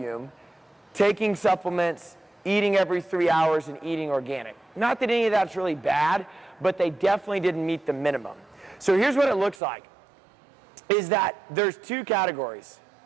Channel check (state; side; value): drops out; left; at 9.6 s